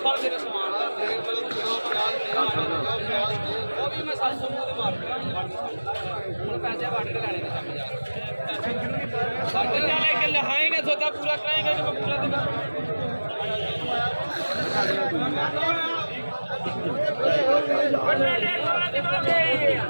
मेरे सामान का वो भी मैं 700 मुंह मार पैसे काट के लाने के समझ काट के लाने के लहाएंगे सोचा पूरा कराएंगे तो पूरा देगा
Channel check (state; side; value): inverted; both; correlation -1.00